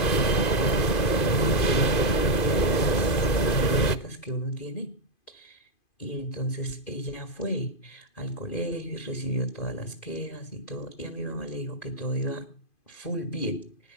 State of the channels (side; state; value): right; late; 2.5 ms